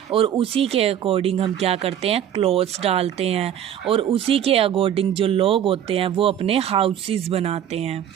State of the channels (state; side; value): quieter; left; 10.0 dB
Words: और उसी के अकॉर्डिंग हम क्या करते हैं, क्लोथ्स डालते हैं और उसी के अकॉर्डिंग जो लोग होते हैं वो अपने हाउसेस बनाते हैं।